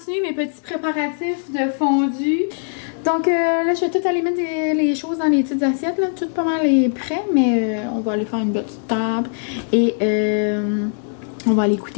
mes petits préparatifs de fondu. Donc là, je vais tout aller mettre les choses dans les petites assiettes. Là. Tout pas mal est prêt, mais on va aller faire une petite table. Et on va aller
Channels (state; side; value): silent; right; digital silence